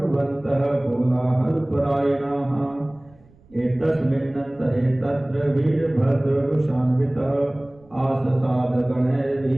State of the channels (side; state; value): right; noise; rumble, 29 dB below the sound